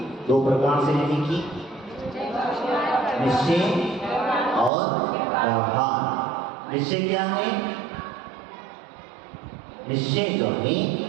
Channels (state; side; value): drops out; left; at 4.7 s